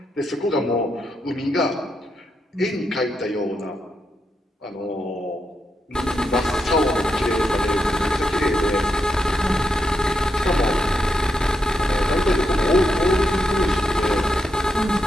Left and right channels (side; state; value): both; normal; correlation 0.83